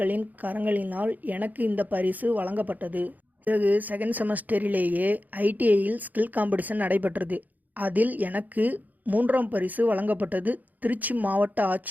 கரங்களினால் எனக்கு இந்த பரிசு வழங்கப்பட்டது. பிறகு செகண்ட் செமஸ்டரிலேயே ஐடிஐயில் ஸ்கில் காம்படிஷன் நடைபெற்றது. அதில் எனக்கு 3ஆம் பரிசு வழங்கப்பட்டது. திருச்சி மாவட்ட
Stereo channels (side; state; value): left; late; 0.081 ms